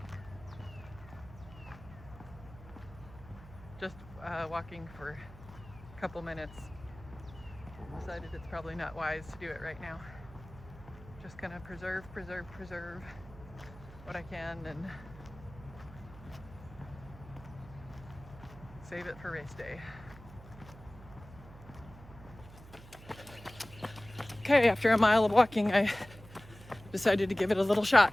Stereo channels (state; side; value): noise; right; hum, 18 dB below the sound